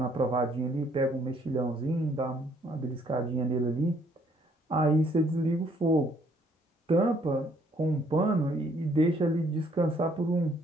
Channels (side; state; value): both; normal; correlation 0.65